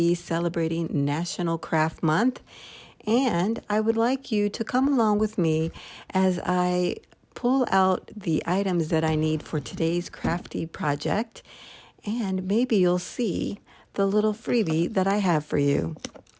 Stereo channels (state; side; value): identical; both; correlation 1.00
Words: celebrating National Craft Month, and I would like you to come along with me as I pull out the items that I need for today's crafty project, and maybe you'll see the little freebie that I have for you.